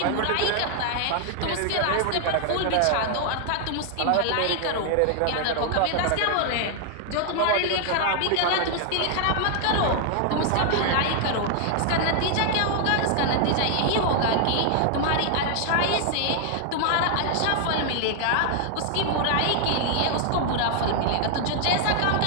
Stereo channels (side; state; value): both; different; correlation 0.00